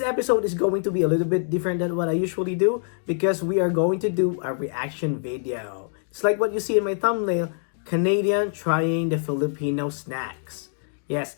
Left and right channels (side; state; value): right; silent; digital silence